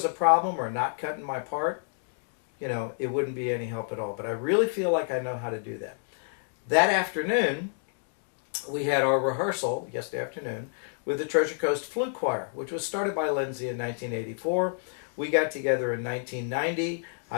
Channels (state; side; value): silent; right; digital silence